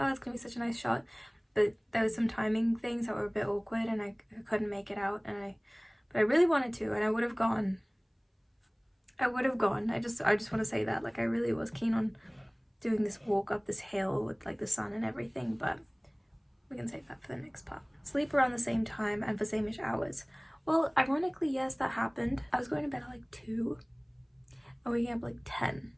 it's gonna be such a nice shot. But there was some timing things that were a bit awkward, and I couldn't make it out. But I really wanted to, and I would have gone. I just want to say that, like, I really was keen on doing this walk up this hill with like the sun and everything, but we can save that for the next part. Sleep around the same time and for same-ish hours. Well, ironically, yes, that happened. I was going to bed at like 2 and waking up like 10.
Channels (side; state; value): both; identical; correlation 1.00